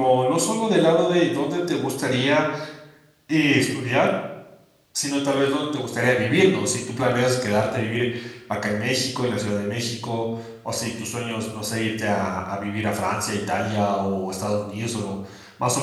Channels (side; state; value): both; identical; correlation 1.00